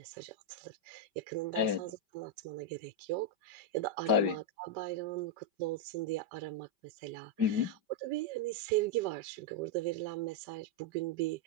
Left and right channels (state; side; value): late; left; 5.2 ms